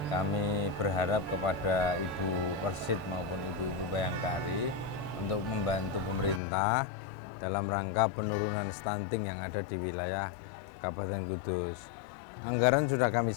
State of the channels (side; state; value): right; drops out; at 6.4 s